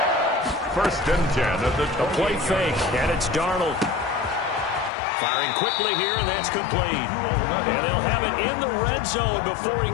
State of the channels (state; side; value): drops out; right; at 4.9 s